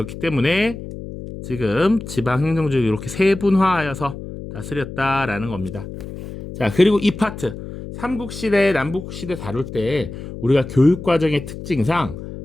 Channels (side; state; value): left; noise; hum, 11 dB below the sound